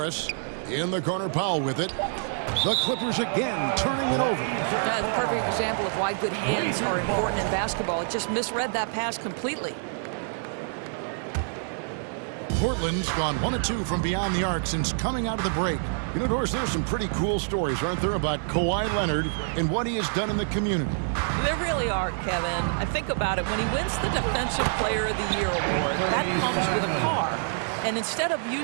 In the corner, Powell with it. The Clippers again turning it over. That's a perfect example of why good hands are important in basketball. It just misread that pass completely. Portland's gone 1 of 2 from beyond the arc since coming out of the break. You know, Doris, there's some pretty cool stories, aren't there, about Kawhi Leonard and what he has done in the community. There really are, Kevin. I think about it. When he wins the Defensive Player of the Year award, that comes with a car. And instead of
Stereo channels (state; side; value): silent; left; digital silence